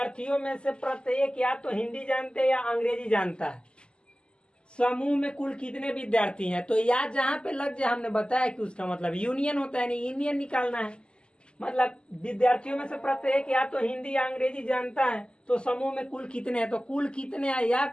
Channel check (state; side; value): late; right; 0.050 ms